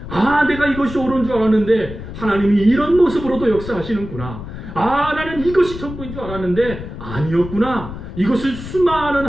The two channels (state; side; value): noise; left; rumble, 10 dB below the sound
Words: 아, 내가 이것이 옳은 줄 알았는데 하나님이 이런 모습으로도 역사하시는구나. 아, 나는 이것이 전부인 줄 알았는데 아니었구나. 이것은 수많은